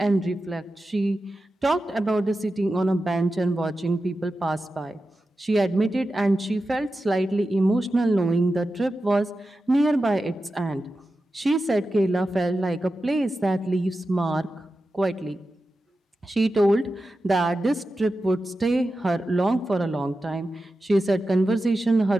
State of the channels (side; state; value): both; normal; correlation 0.92